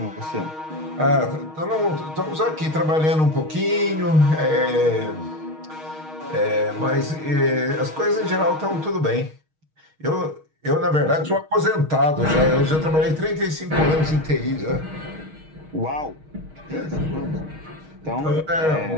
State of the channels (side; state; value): left; late; 6.4 ms